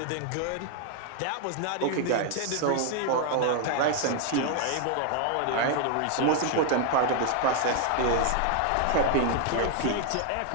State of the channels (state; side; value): different; both; correlation 0.00